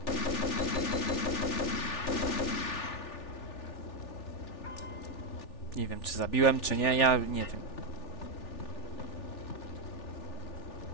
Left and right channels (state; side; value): late; right; 3.4 ms